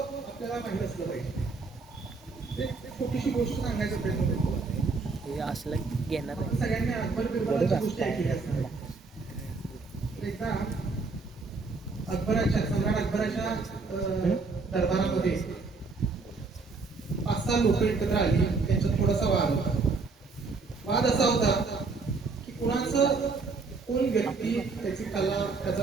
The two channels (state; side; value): quieter; left; 4.1 dB